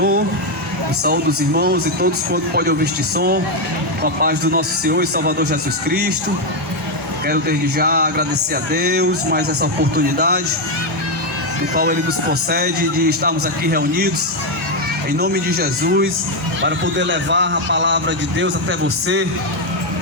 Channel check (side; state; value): both; normal; correlation 0.04